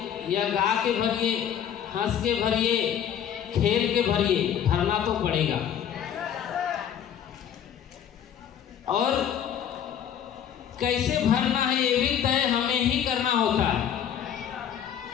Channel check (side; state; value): right; quieter; 9.2 dB